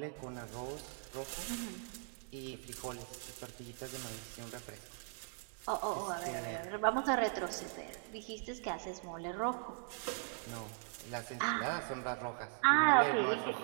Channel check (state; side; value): silent; left; 51 dB below the other